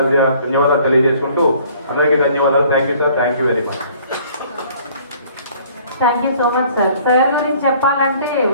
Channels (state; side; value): inverted; both; correlation -0.56